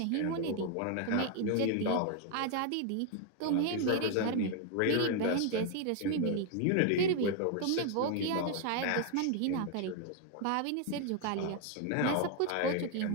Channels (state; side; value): different; both; correlation 0.00